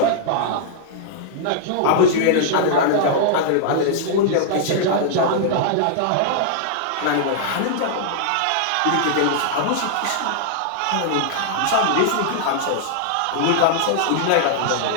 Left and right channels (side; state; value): both; different; correlation -0.01